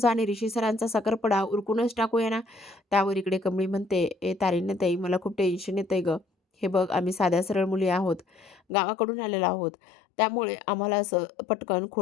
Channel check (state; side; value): drops out; right; at 8.6 s